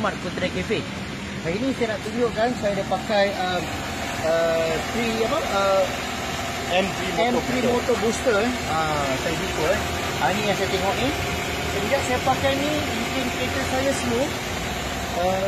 Putra Cafe. Hari ini saya nak tunjukkan saya dah pakai M3 Motor Booster. Saya buka. Ini yang saya tengok ni. Sejak saya pakai ni, bikin kereta saya smooth,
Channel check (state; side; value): identical; both; correlation 1.00